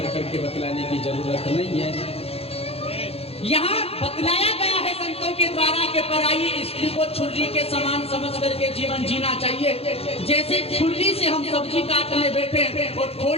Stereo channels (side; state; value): right; late; 0.29 ms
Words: करके बतलाने की जरूरत नहीं है। यहाँ बतलाया गया है संतों के द्वारा कि पराई स्त्री को छुरी के समान समझ करके जीवन जीना चाहिए। जैसे छुरी से हम सब्जी काटने बैठे और